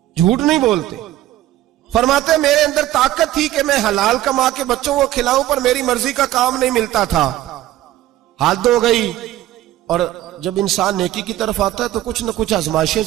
جھوٹ نہیں بولتے۔ فرماتے ہیں میرے اندر طاقت تھی کہ میں حلال کما کے بچوں کو کھلاؤں، پر میری مرضی کا کام نہیں ملتا تھا۔ حد ہو گئی۔ اور جب انسان نیکی کی طرف آتا ہے تو کچھ نہ کچھ آزمائشیں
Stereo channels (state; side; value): quieter; left; 14.2 dB